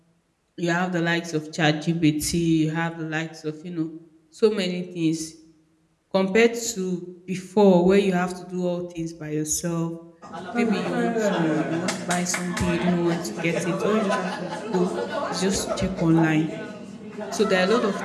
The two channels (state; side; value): identical; both; correlation 1.00